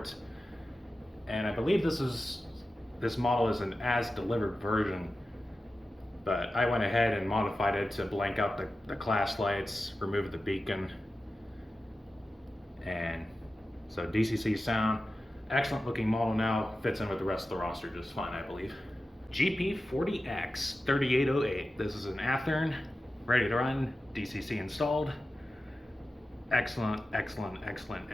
And I believe this model is an as-delivered version, but I went ahead and modified it to blank out the class lights, remove the beacon, and so DCC sound. Excellent looking model now, fits in with the rest of the roster just fine, I believe. GP40X 3808. This is an Athearn, ready to run, DCC installed. Excellent, excellent, excellent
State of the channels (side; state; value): both; normal; correlation 0.93